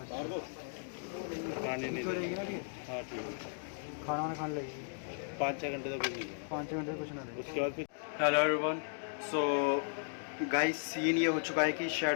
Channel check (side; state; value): right; silent; digital silence